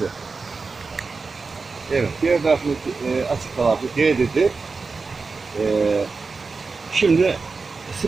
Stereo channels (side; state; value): left; quieter; 4.3 dB